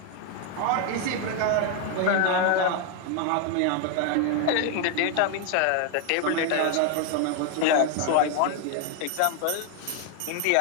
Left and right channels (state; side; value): different; both; correlation 0.01